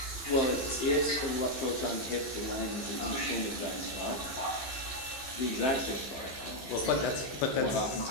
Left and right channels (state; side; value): late; right; 15 ms